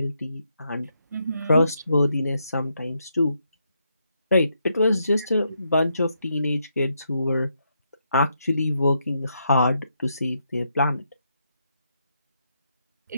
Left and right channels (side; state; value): both; inverted; correlation -0.79